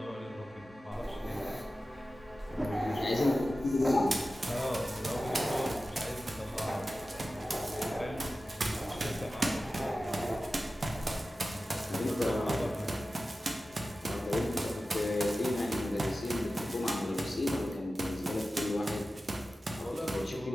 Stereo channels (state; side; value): normal; both; correlation 0.94